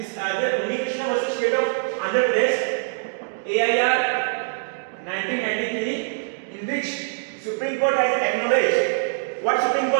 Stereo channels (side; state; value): left; silent; digital silence